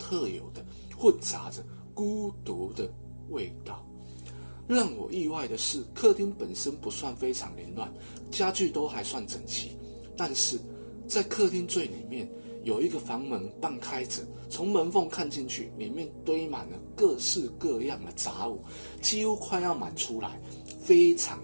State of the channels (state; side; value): inverted; both; correlation -1.00